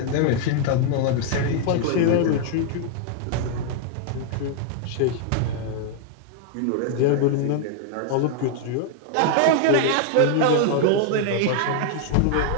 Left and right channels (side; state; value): both; different; correlation 0.00